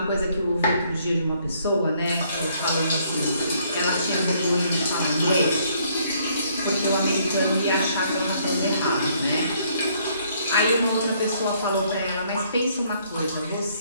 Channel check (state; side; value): inverted; both; correlation -0.67